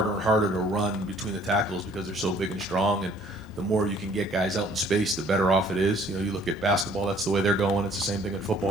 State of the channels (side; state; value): both; normal; correlation 0.58